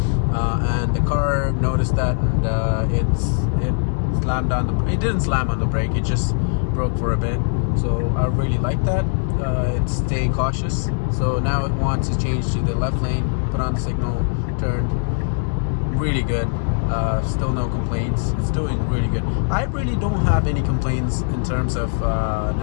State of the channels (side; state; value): right; silent; digital silence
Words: and the car noticed that, and it slammed on the. It didn't slam on the brake. It just broke for a bit. So I really like that. It's staying cautious. So now it wants to change to the left lane. Put on the signal, turned. Really good. Still no complaints. It's doing really good. I really don't have any complaints in terms of